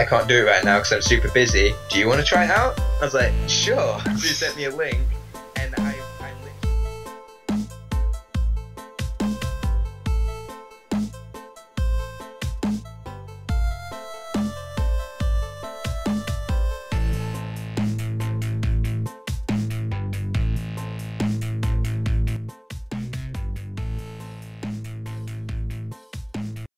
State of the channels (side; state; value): both; identical; correlation 1.00